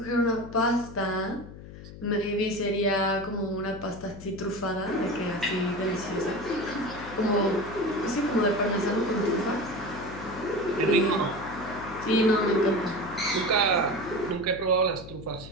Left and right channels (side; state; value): left; noise; hum, 14 dB below the sound